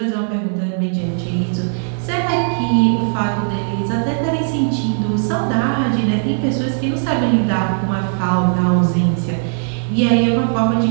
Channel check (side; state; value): left; silent; digital silence